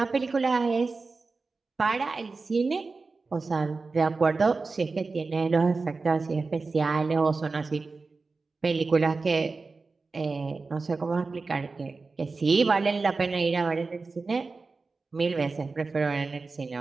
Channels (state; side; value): quieter; left; 4.0 dB